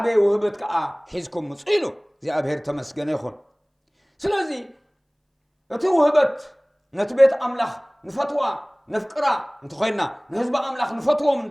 ውህበት ከዓ ሒዝኩም ምጽኡ ኢሉ እግዚአብሔር ተመስገነ ይኹን ስለዚ እቲ ውህበት ነቲ ቤት ኣምላኽ ንፈትዋ ነፍቅራ እንተኾይና ንህዝቢ ኣምላኽ ንፈትዎም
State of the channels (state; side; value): identical; both; correlation 1.00